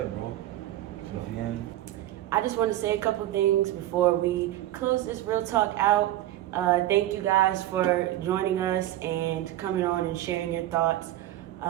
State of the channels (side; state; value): left; quieter; 14.2 dB